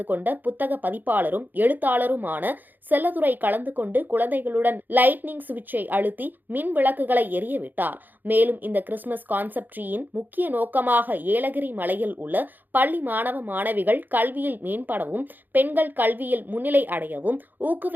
கொண்ட புத்தக பதிப்பாளரும் எழுத்தாளருமான செல்லதுரை கலந்து கொண்டு குழந்தைகளுடன் லைட்னிங் சுவிட்சை அழுத்தி மின் விளக்குகளை விட்டார். மேலும் இந்த கிறிஸ்துமஸ் கான்செப்ட் ட்ரீயின் முக்கிய நோக்கமாக ஏலகிரி மலையில் உள்ள பள்ளி மாணவ மாணவிகள் கல்வியில் மேம்படவும் பெண்கள் கல்வியில் முன்னிலை அடையவும்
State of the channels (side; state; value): left; late; 0.087 ms